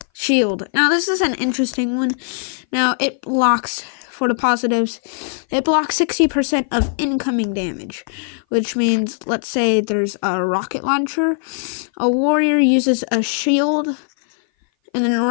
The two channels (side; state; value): right; silent; 58 dB below the other